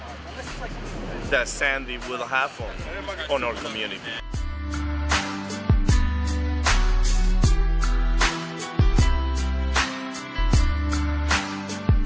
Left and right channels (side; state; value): both; identical; correlation 1.00